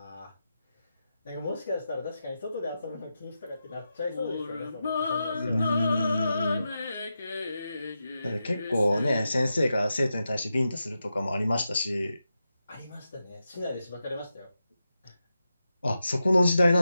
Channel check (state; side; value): inverted; both; correlation -0.89